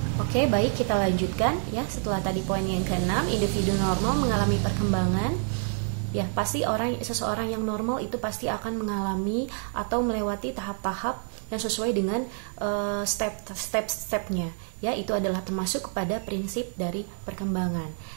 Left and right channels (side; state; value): left; silent; 60 dB below the other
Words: Oke, baik, kita lanjutkan ya. Setelah tadi poin yang ke-6, individu normal mengalami perkembangan. Ya, pasti seseorang yang normal itu pasti akan mengalami atau melewati tahap-tahap yang sesuai dengan step-stepnya. Ya, itu adalah termasuk kepada prinsip dari perkembangan.